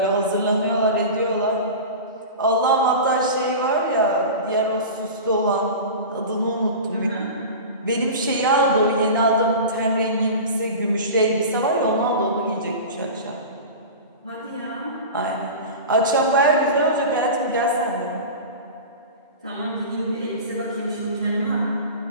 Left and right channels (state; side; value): inverted; both; correlation -0.31